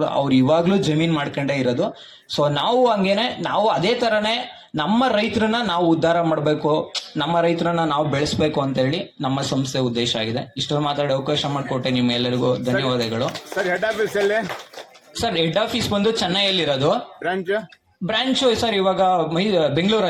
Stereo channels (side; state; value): both; identical; correlation 1.00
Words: ಅವ್ರು ಇವಾಗ್ಲೂ ಜಮೀನ್ ಮಾಡ್ಕೊಂಡೇ ಇರೋದು. ಸೊ ನಾವು ಹಂಗೇನೆ, ನಾವು ಅದೇ ತರನೇ ನಮ್ಮ ರೈತರನ್ನ ನಾವು ಉದ್ಧಾರ ಮಾಡಬೇಕು, ನಮ್ಮ ರೈತರನ್ನ ನಾವು ಬೆಳೆಸ್ಬೇಕು ಅಂತ ಹೇಳಿ ನಮ್ಮ ಸಂಸ್ಥೆ ಉದ್ದೇಶ ಆಗಿದೆ. ಇಷ್ಟೊಂದು ಮಾತಾಡಿ ಅವಕಾಶ ಮಾಡಿಕೊಟ್ಟೆ ನಿಮ್ಮೆಲ್ಲರಿಗೂ ಧನ್ಯವಾದಗಳು. ಸರ್, ಹೆಡ್ ಆಫೀಸ್ ಎಲ್ಲಿ? ಸರ್, ಹೆಡ್ ಆಫೀಸ್ ಬಂದು ಚೆನ್ನೈಯಲ್ಲಿರೋದು. ಬ್ರಾಂಚ್ ಸರ್ ಇವಾಗ